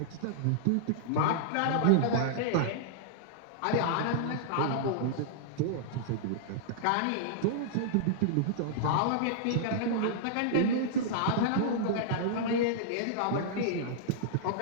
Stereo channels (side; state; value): both; different; correlation -0.02